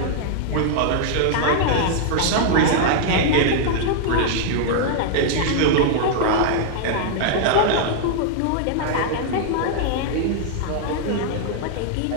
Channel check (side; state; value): both; different; correlation 0.00